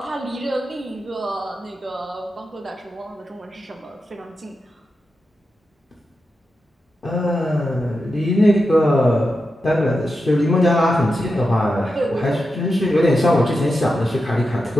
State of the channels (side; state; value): both; normal; correlation 0.89